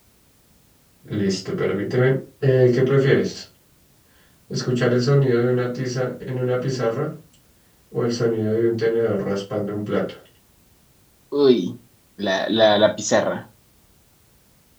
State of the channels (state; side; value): identical; both; correlation 1.00